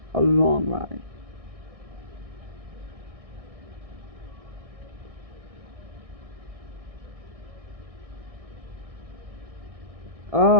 A long ride.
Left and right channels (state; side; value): late; left; 1.6 ms